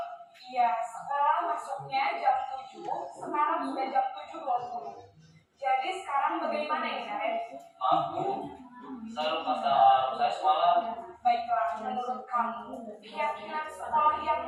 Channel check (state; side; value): identical; both; correlation 1.00